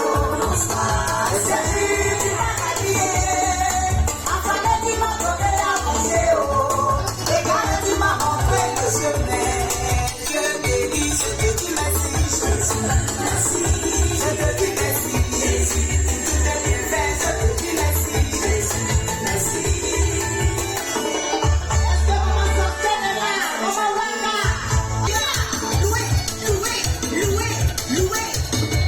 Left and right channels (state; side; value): identical; both; correlation 1.00